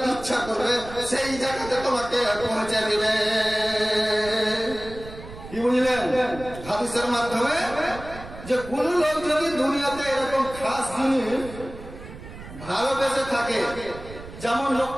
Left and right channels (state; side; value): noise; right; rumble, 14 dB below the sound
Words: ইচ্ছা করবে সেই জায়গাতে তোমাকে পৌঁছে দিবে। কি বুঝলেন হাদিসের মাধ্যমে? যে কোন লোক যদি দুনিয়াতে এরকম খাস জিনিস ভালোবেসে থাকে, যেমন